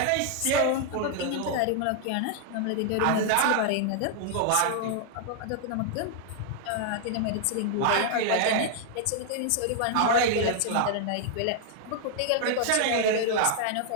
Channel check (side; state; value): both; different; correlation 0.00